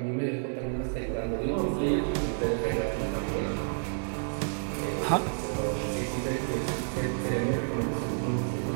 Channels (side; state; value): left; silent; digital silence